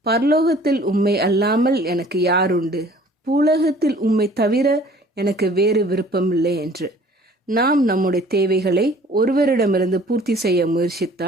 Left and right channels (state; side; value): normal; both; correlation 0.52